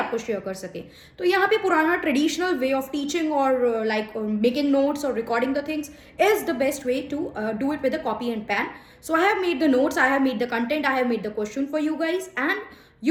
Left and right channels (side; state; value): both; identical; correlation 1.00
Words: शेयर कर सके। तो यहाँ पे पुराना ट्रेडिशनल वे ऑफ टीचिंग और लाइक मेकिंग नोट्स और recording the things is the best way to do it with a copy and pen. So I have made the notes, I have made the content, I have made the question for you guys and